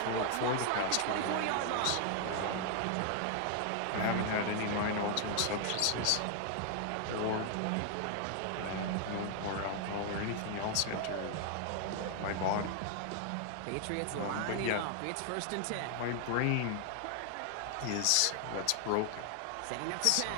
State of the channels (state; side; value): different; both; correlation 0.00